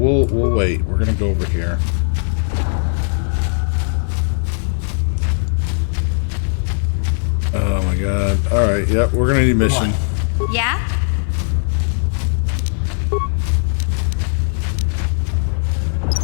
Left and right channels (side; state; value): right; silent; 56 dB below the other